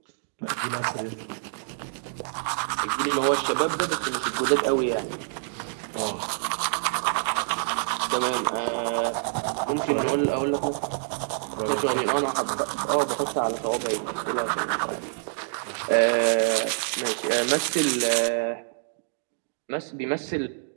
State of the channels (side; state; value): left; silent; digital silence